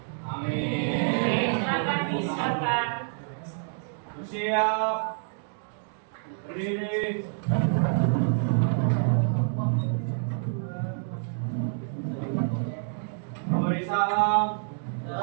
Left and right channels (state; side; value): silent; left; digital silence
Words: Oke, silakan disiapkan. Siap. Berdiri. Memberi salam.